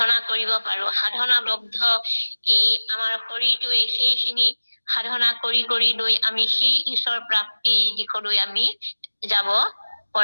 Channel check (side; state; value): both; inverted; correlation -1.00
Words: কৰিব পাৰো। সাধনাবদ্ধ এই আমাৰ শৰীৰটোৱে সেইখিনি সাধনা কৰি লৈ আমি সেই ঈশ্বৰ প্ৰাপ্তিৰ দিশলৈ আমি যাব